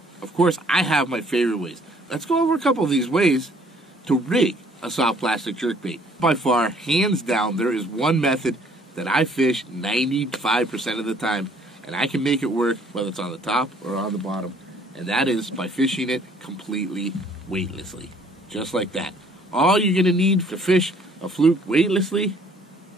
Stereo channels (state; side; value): normal; both; correlation 0.60